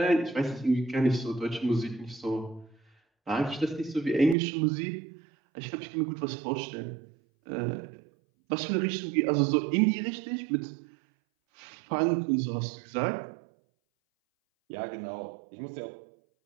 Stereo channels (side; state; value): left; drops out; at 4.4 s